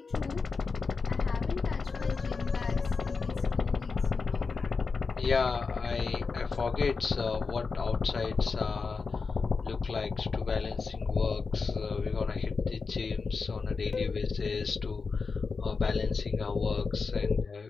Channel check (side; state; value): right; quieter; 4.7 dB